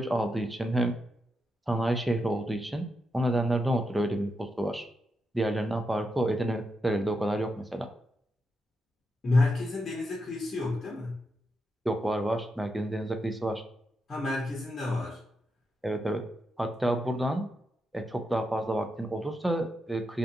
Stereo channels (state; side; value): normal; both; correlation 0.85